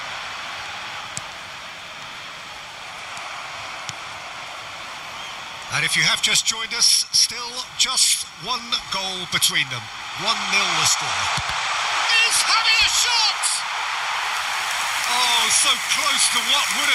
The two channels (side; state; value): both; identical; correlation 1.00